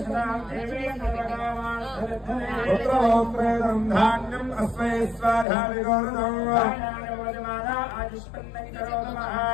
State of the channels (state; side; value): drops out; right; at 5.5 s